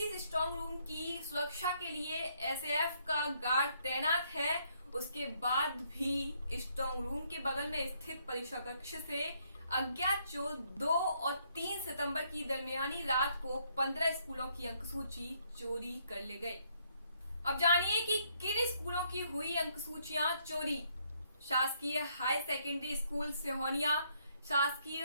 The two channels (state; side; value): inverted; both; correlation -0.71